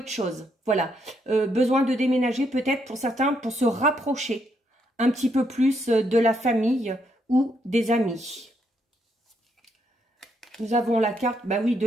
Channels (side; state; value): both; normal; correlation 0.76